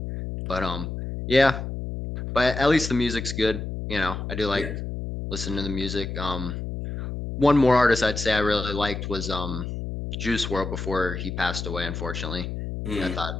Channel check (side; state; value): left; noise; hum, 5 dB below the sound